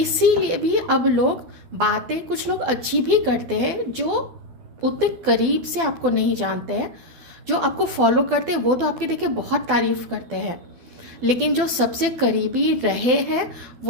भी अब लोग बातें, कुछ लोग अच्छी भी करते हैं जो उतने करीब से आपको नहीं जानते हैं, जो आपको फॉलो करते हैं वो तो आपकी देखिए बहुत तारीफ करते हैं, लेकिन जो सबसे करीबी रहे हैं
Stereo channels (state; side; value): late; left; 12 ms